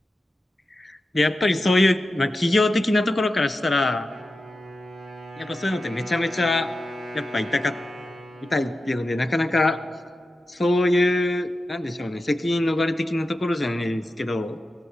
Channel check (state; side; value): normal; both; correlation 0.92